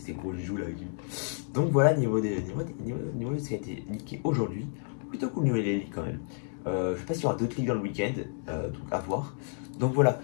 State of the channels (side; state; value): right; silent; 57 dB below the other